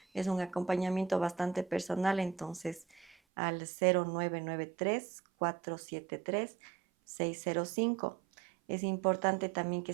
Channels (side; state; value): left; drops out; at 3.2 s